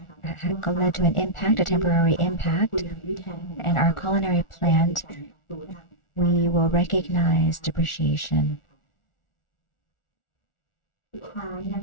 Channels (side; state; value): right; late; 1.4 ms